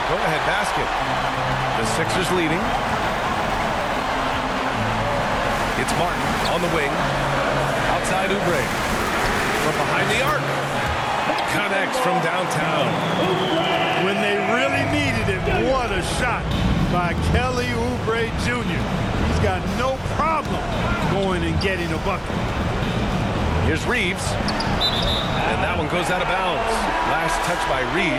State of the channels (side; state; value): both; identical; correlation 1.00